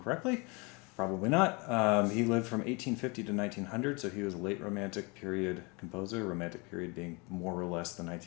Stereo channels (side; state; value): right; quieter; 29.1 dB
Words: correctly. Probably not. He lived from 1850 to 1900, so he was a late Romantic period composer, Romantic period being more or less the